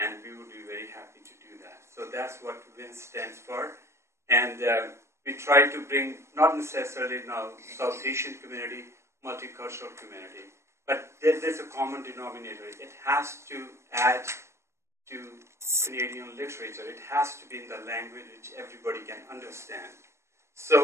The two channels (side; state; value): left; late; 0.13 ms